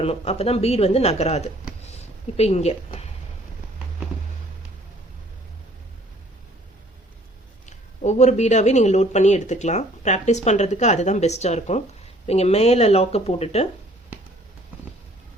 அப்பதான் பீட் வந்து நகராது. இப்ப இங்க ஒவ்வொரு பீடாவே நீங்க லோட் பண்ணி எடுத்துக்கலாம். பிராக்டிஸ் பண்றதுக்கு அதுதான் பெஸ்டா இருக்கும். நீங்க மேல லாக்க போட்டுட்டு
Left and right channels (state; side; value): normal; both; correlation 0.57